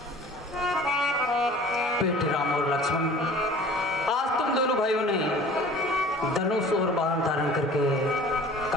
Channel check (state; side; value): normal; both; correlation 0.46